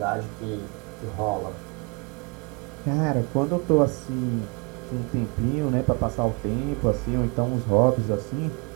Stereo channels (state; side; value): quieter; left; 32.2 dB